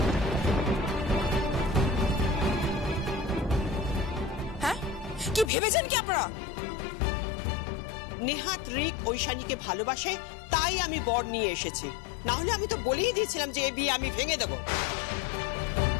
হ্যাঁ, কি ভেবেছেন কি আপনারা? নেহাত রিক ঐশানীকে ভালোবাসে, তাই আমি বর নিয়ে এসেছি। না হলে আমি তো বলেই দিয়েছিলাম যে এই বিয়ে আমি ভেঙে দেব।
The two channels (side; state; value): right; drops out; at 5.5 s